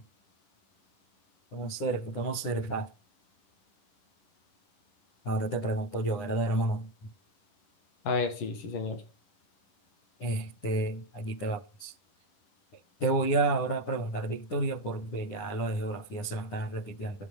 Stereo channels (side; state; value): right; late; 10 ms